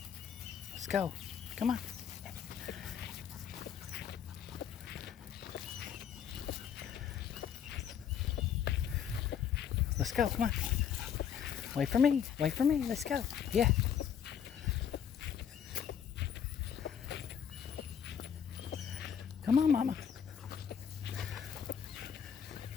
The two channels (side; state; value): right; quieter; 8.2 dB